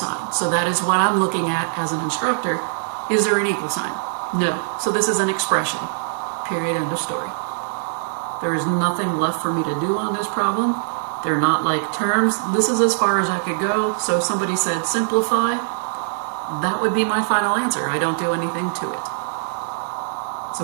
So that is what I'm looking at as an instructor. Is there an equal sign? No. So this is an expression. Period. End of story. There is nothing left for me to do on this problem. They're not like terms. This is as far as I could go. So if somebody said simplify, that would be my final answer. I don't do anything to it. So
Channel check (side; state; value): left; silent; digital silence